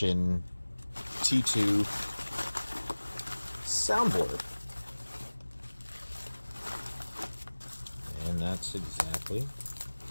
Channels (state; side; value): inverted; both; correlation -1.00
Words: T2 soundboard. And that's exactly